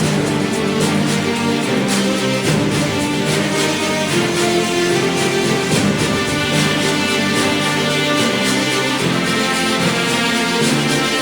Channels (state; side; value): identical; both; correlation 1.00